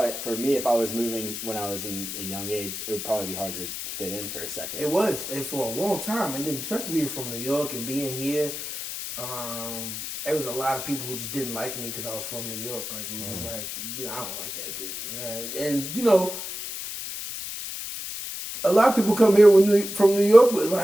for me, if I was moving when I was in a young age, it would probably be hard to fit in for a second. It was, and for a long time, and then especially being from New York and being here, there was a lot of people who just didn't like me because I was from New York. Like, it was just like, I don't like that dude. And, you know, a lot of people come here from New York with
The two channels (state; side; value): noise; left; hiss, 7 dB below the sound